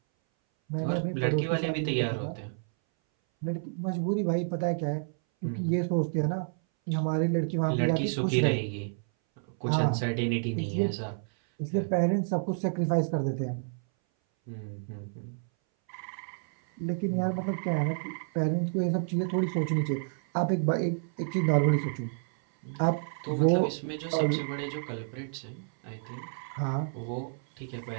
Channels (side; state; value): left; silent; 58 dB below the other